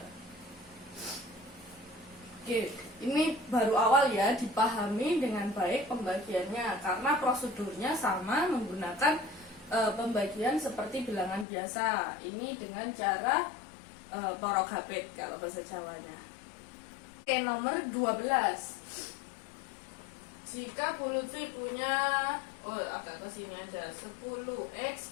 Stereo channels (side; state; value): right; drops out; at 11.5 s